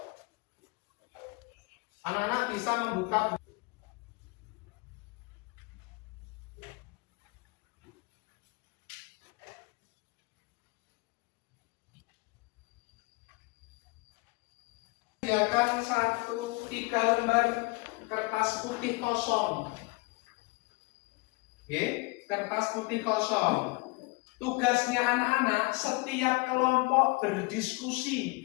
Anak-anak bisa membuka sediakan 3 lembar kertas putih kosong. Oke, kertas putih kosong. Tugasnya anak-anak setiap kelompok berdiskusi,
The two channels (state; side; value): quieter; right; 26.2 dB